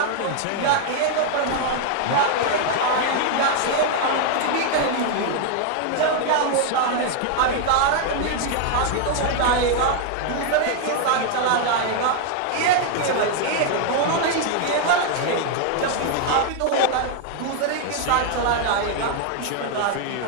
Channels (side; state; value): both; different; correlation 0.00